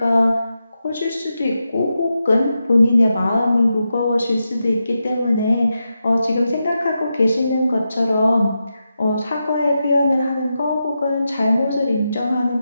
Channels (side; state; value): both; inverted; correlation -0.88